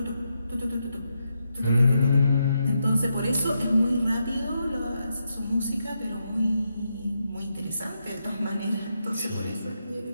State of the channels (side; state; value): both; inverted; correlation -0.83